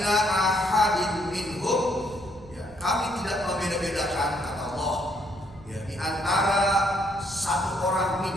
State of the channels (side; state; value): right; noise; rumble, 20 dB below the sound